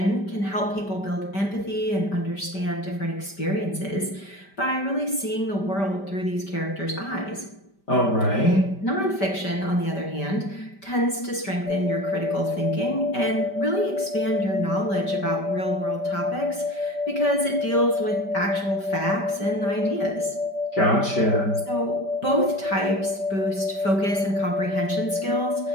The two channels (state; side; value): late; right; 5.1 ms